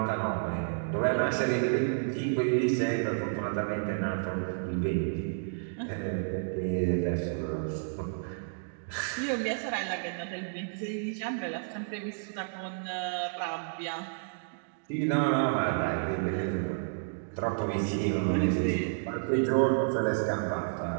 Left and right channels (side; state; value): left; silent; digital silence